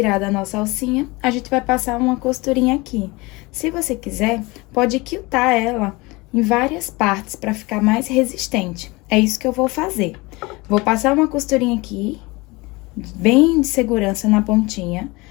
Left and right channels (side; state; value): right; quieter; 23.8 dB